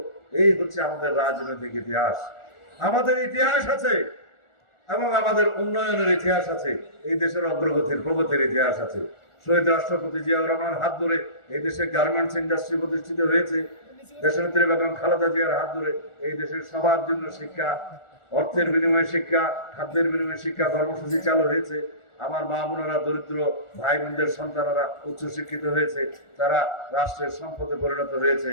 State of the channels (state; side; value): late; right; 1.4 ms